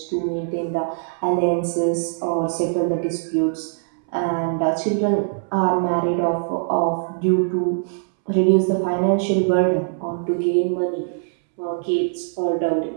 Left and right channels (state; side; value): silent; left; 64 dB below the other